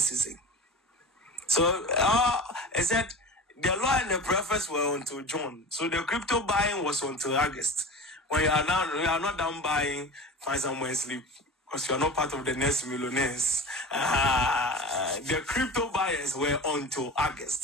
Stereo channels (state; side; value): normal; both; correlation 0.32